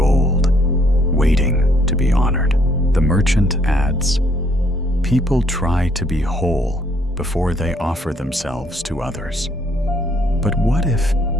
waiting to be honored. The merchant adds, people try to be whole before they offer themselves to others. But what if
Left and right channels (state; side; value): normal; both; correlation 0.67